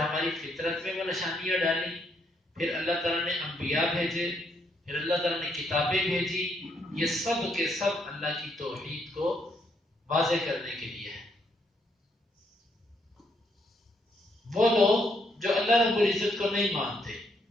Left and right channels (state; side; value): normal; both; correlation 0.74